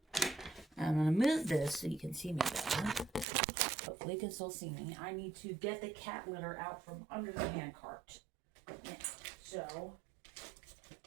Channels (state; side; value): drops out; left; at 3.2 s